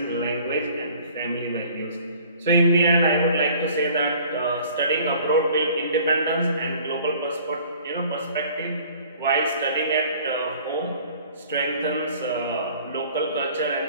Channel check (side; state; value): both; inverted; correlation -0.51